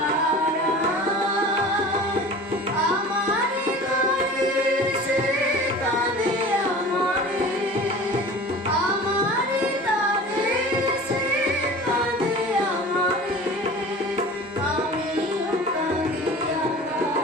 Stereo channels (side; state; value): both; normal; correlation 0.39